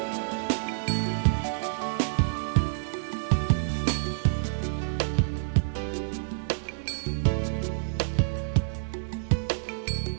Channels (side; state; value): left; silent; digital silence